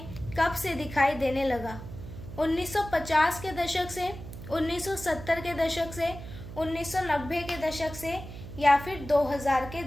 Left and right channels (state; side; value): noise; right; hum, 12 dB below the sound